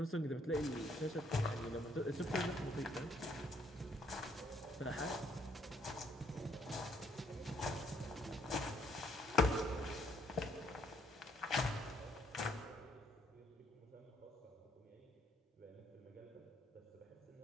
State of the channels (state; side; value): normal; both; correlation 0.68